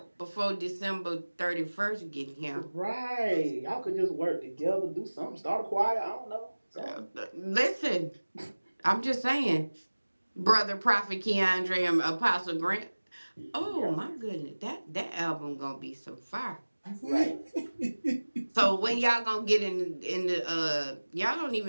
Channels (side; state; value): both; inverted; correlation -1.00